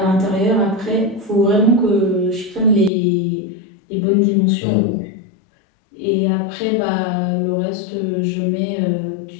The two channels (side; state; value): right; drops out; at 2.9 s